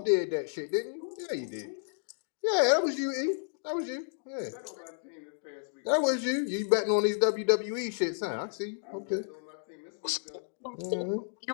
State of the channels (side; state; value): right; silent; digital silence